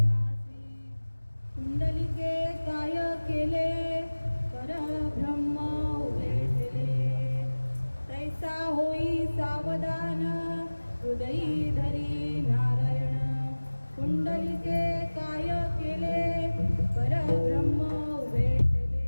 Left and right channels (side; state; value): both; inverted; correlation -1.00